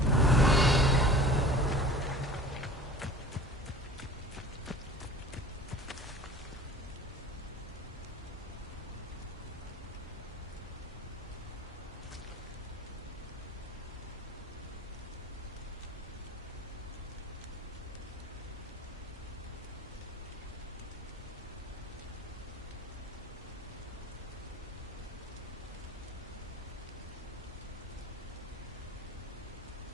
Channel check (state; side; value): normal; both; correlation 0.42